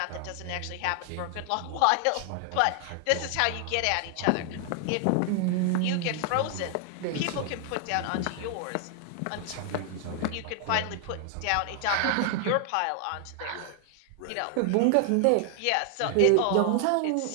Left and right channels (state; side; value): different; both; correlation 0.00